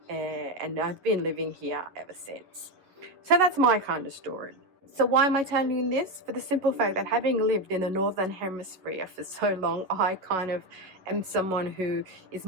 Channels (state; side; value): late; left; 11 ms